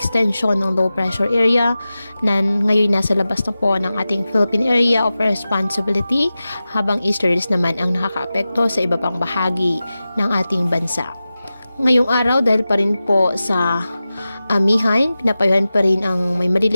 ng low pressure area na ngayon nasa labas na po ng ating Philippine Area of Responsibility habang easterlies naman ang nakakaapekto sa iba pang bahagi ng ating bansa. Ngayong araw, dahil pa rin po sa amihan, pinapayuhan pa rin ang may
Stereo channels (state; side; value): inverted; both; correlation -0.95